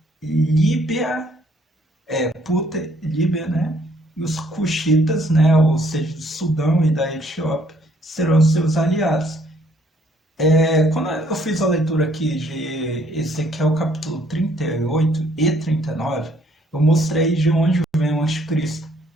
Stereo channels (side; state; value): both; normal; correlation 0.64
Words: Líbia, Puta, Líbia, né? E os Cuxitas, né? Ou seja, do Sudão e da Etiópia, serão seus aliados. Quando eu fiz a leitura aqui de Ezequiel capítulo 38 e 39, eu mostrei de onde vem o anticristo.